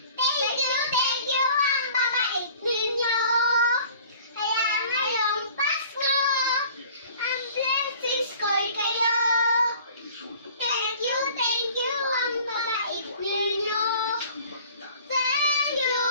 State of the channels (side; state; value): both; inverted; correlation -0.49